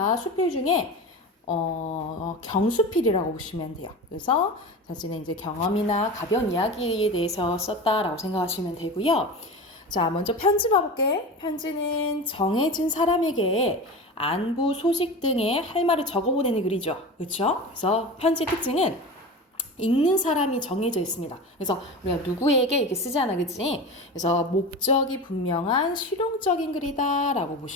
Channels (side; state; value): both; normal; correlation 0.29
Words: 수필 중에 경수필이라고 보시면 돼요. 그래서 자신의 이제 경험이나 가벼운 이야기에 대해서 썼다라고 생각하시면 되고요. 자, 먼저 편지 봐볼게. 편지는 정해진 사람에게 안부, 소식 등의 할 말을 적어보내는 글이죠. 그렇죠? 그래서 편지의 특징은 읽는 사람이 정해져 있습니다. 그래서 우리가 누구에게 이렇게 쓰잖아, 그치? 그래서 목적이 분명한 실용적인 글이다라고